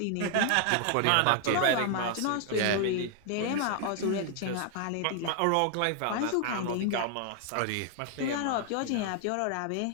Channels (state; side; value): different; both; correlation 0.00